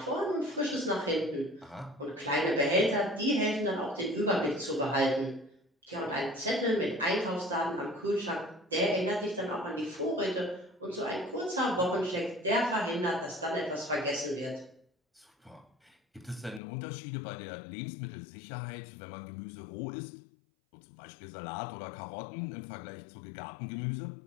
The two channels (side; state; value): right; drops out; at 16.6 s